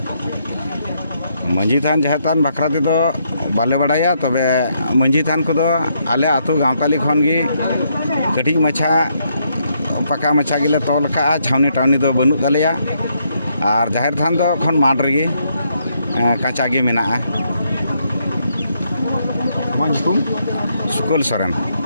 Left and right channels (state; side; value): inverted; both; correlation -0.75